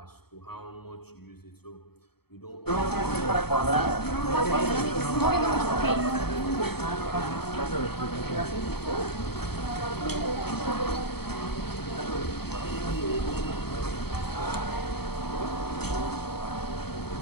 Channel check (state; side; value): late; right; 0.96 ms